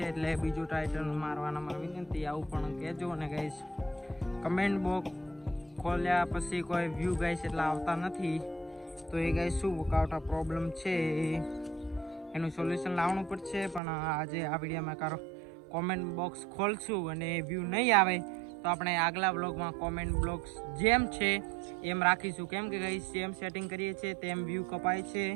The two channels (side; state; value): left; drops out; at 13.8 s